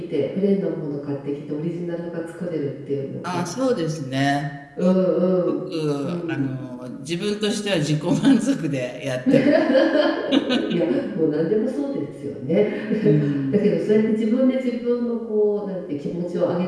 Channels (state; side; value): identical; both; correlation 1.00